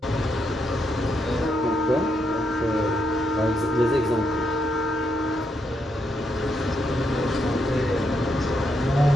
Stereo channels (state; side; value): normal; both; correlation 0.79